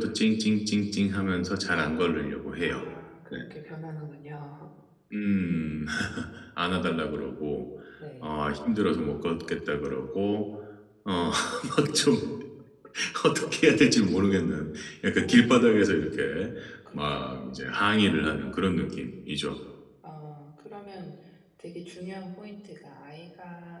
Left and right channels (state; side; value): identical; both; correlation 1.00